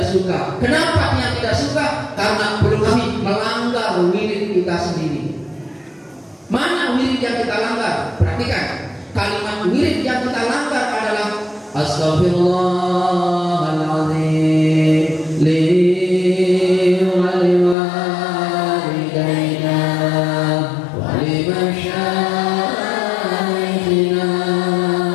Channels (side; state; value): right; drops out; at 17.8 s